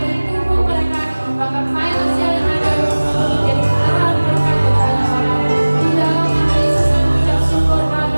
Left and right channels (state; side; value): inverted; both; correlation -1.00